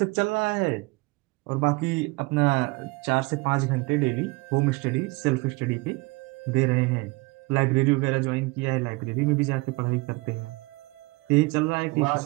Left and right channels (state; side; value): quieter; left; 25.2 dB